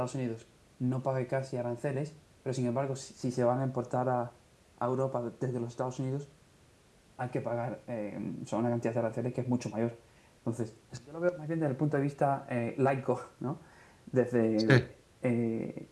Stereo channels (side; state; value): both; identical; correlation 1.00